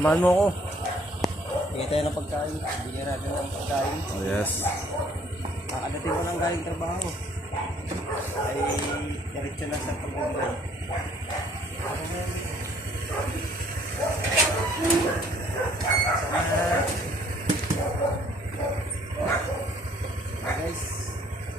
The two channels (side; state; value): both; normal; correlation 0.60